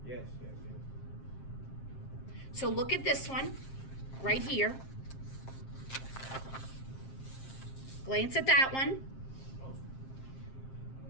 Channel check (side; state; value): right; late; 7.6 ms